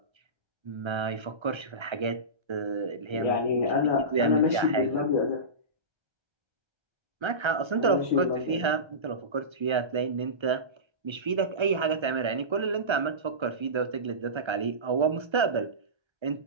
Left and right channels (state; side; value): late; left; 1.3 ms